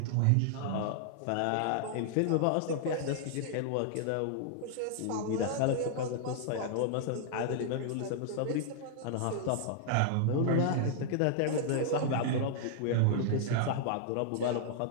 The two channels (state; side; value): different; both; correlation -0.01